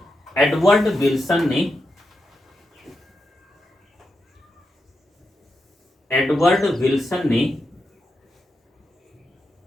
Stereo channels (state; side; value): normal; both; correlation 0.86